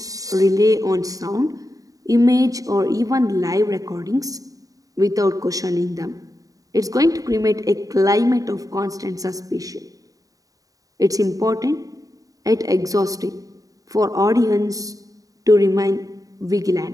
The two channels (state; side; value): late; left; 0.17 ms